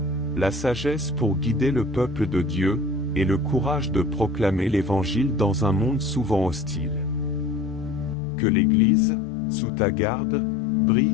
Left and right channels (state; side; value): drops out; right; at 8.2 s